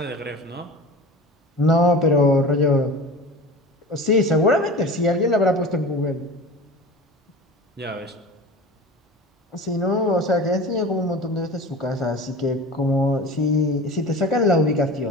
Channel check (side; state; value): both; normal; correlation 0.35